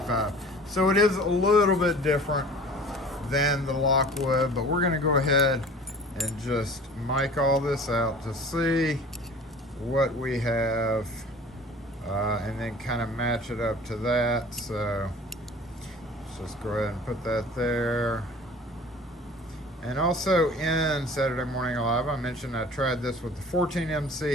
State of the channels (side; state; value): both; normal; correlation 0.44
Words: So it is a little bit different than the Lockwood, but we're going to go ahead and just mic all this out to see what we have. And then kind of match it up to that. So let's just go ahead and put that there. And also in Saturday Morning Live, I mentioned I tried this with the